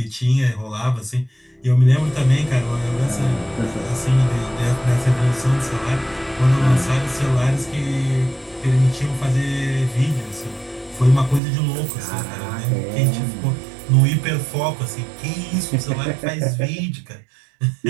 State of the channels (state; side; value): drops out; left; at 11.4 s